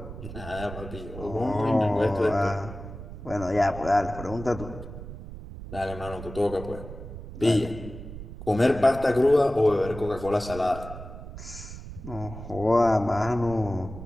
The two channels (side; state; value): right; noise; rumble, 12 dB below the sound